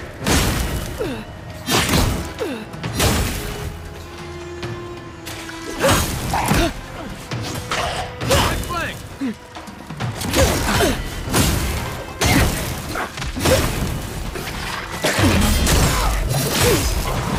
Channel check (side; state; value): both; identical; correlation 1.00